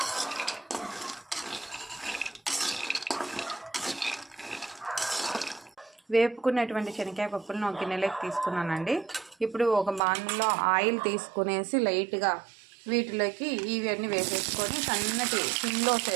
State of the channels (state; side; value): drops out; left; at 10.0 s